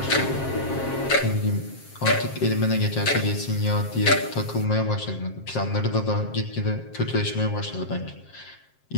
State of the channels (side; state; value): right; late; 7.5 ms